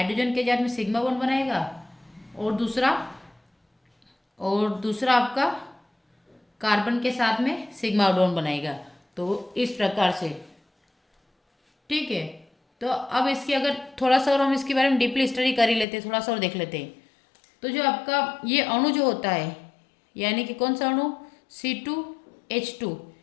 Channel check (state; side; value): drops out; right; at 15.9 s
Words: के साथ में सिग्मा बॉन्ड बनाएगा, और दूसरा आपका कार्बन के साथ में सिग्मा बॉन्ड बनाएगा। तो इस प्रकार से, ठीक है। तो अब इसकी अगर थोड़ा सा और हम इसके बारे में डीपली स्टडी कर ही लेते हैं, थोड़ा सा और देख लेते हैं। तो जो आपका ये अणु जो होता है, यानी कि कौन सा अणु, C2H2,